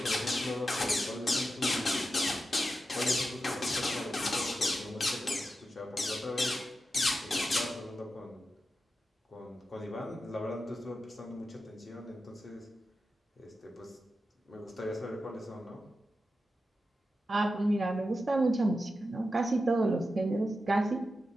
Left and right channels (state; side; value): normal; both; correlation 0.90